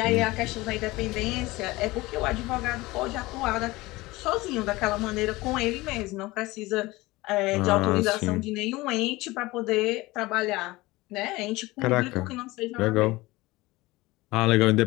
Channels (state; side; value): quieter; right; 20.4 dB